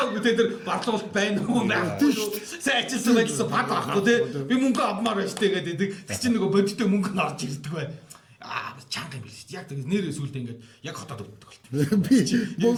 тэ тэр барлуулалт байна уу байхгүй шүү. Сайн ажилласан байлсан бад авахгүй тэ. Би мөнгө авмаар байна шүү дээ гэдэг. Тэр чинь нөгөө бодиттой мөнгө нь орж ирдэг бай. Чанга юм биш. Яг тэр нэрээ сүулдэ ингээд яг хотоод өвддөг болт. Би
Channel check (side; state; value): both; identical; correlation 1.00